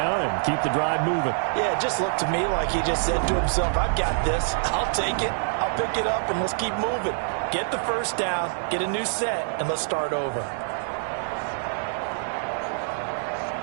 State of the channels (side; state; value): left; silent; digital silence